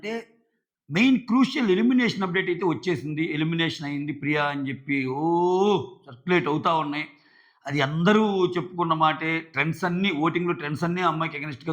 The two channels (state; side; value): identical; both; correlation 1.00